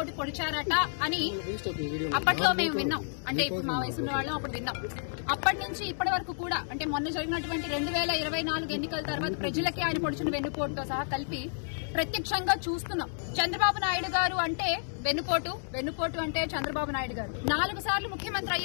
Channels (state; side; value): silent; right; digital silence